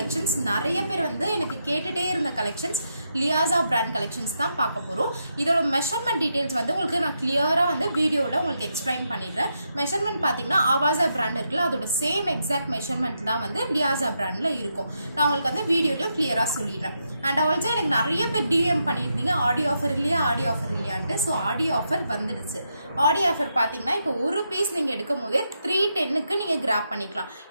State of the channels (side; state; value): both; inverted; correlation -0.82